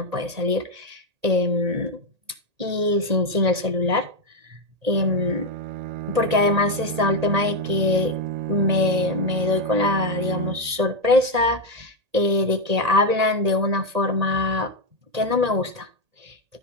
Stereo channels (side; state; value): left; late; 1.8 ms